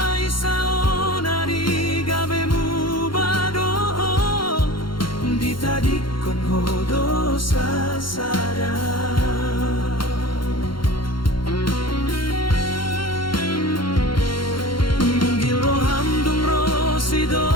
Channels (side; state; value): right; late; 0.73 ms